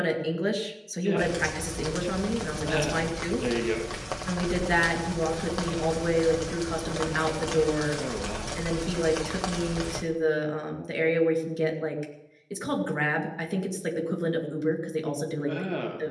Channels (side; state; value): both; identical; correlation 1.00